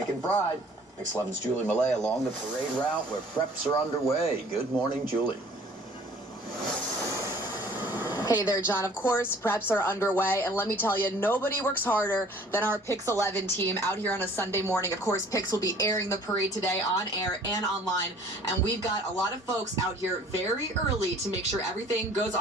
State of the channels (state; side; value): normal; both; correlation 0.53